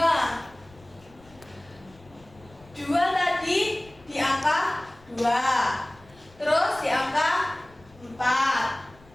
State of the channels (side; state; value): left; noise; rumble, 26 dB below the sound